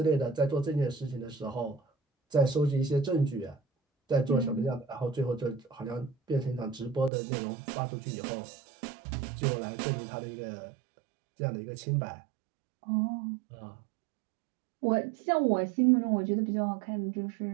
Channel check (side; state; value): left; drops out; at 7.1 s